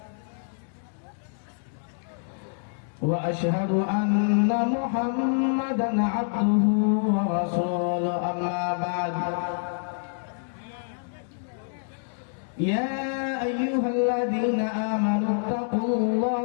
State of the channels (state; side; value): silent; right; digital silence